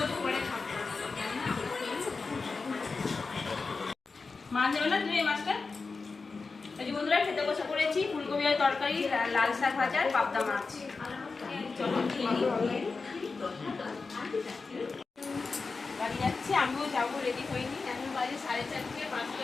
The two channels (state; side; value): quieter; right; 4.3 dB